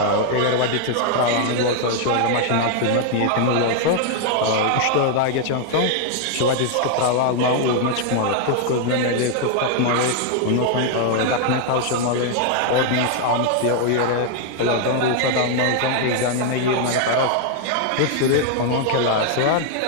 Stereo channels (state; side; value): different; both; correlation 0.00